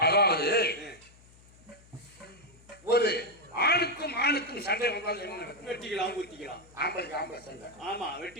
அதாவது ஒரு ஆணுக்கும் ஆணுக்கும் சண்டை வந்தால் என்ன நடக்கும்? வெட்டிக்கலாம் குத்திக்கலாம். ஆம்பளைக்கு ஆம்பளை சண்டை. ஆமா,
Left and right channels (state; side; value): noise; left; hum, 25 dB below the sound